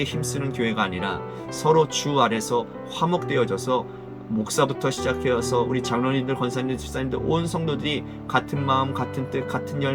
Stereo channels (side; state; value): both; identical; correlation 1.00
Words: 힘쓰는 교회가 아니라 서로 주 아래서 화목되어져서 목사부터 시작해서 우리 장로님들, 권사님들, 집사님들 온 성도들이 같은 마음, 같은 뜻, 같은